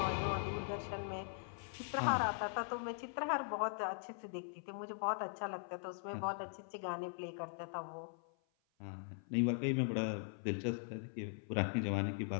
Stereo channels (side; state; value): right; silent; 50 dB below the other